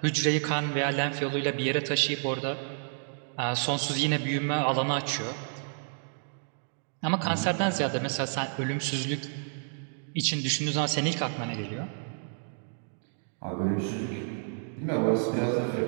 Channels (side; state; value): left; silent; digital silence